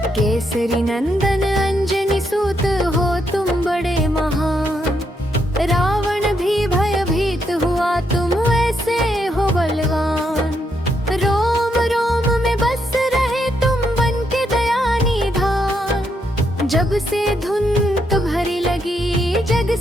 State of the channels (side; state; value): both; normal; correlation 0.78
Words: केसरी नंदन अंजनी सूत हो तुम बड़े महान। रावण भी भयभीत हुआ, तुम ऐसे हो बलवान। रोम रोम में बस रहे तुम बन के दया निधान। जब से धुन तुम्हारी लगी, जग